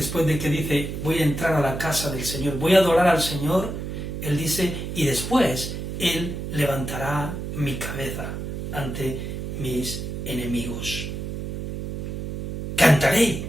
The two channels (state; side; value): noise; right; hum, 5 dB below the sound